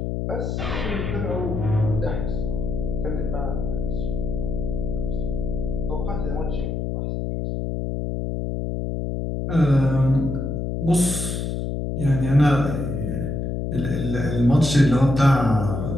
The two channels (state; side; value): noise; left; hum, 2 dB below the sound